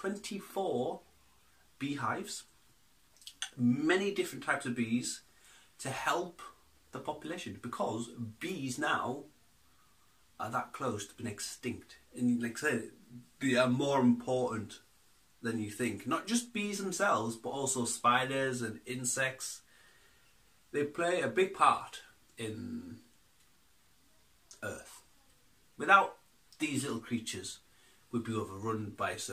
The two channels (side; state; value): both; identical; correlation 1.00